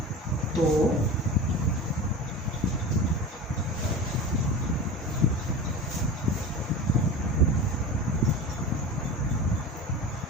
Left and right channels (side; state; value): both; normal; correlation 0.32